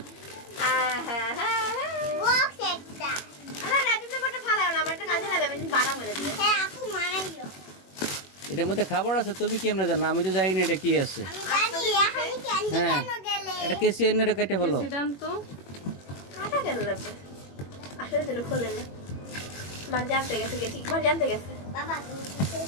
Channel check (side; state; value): right; late; 21 ms